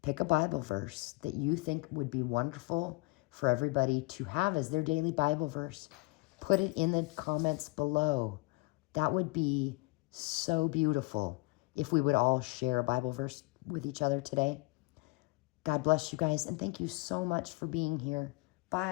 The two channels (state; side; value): quieter; right; 24.8 dB